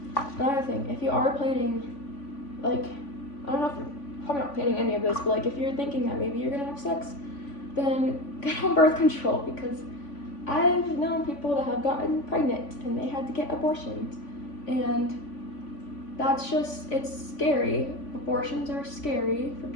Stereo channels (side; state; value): right; late; 3.5 ms